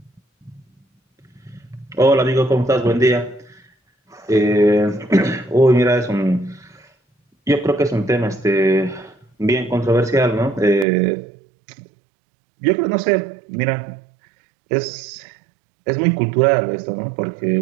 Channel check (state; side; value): drops out; left; at 10.9 s